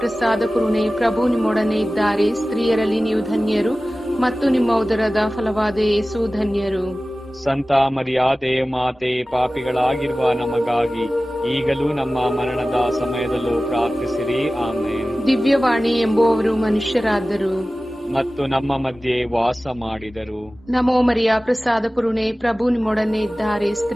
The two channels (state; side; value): normal; both; correlation 0.97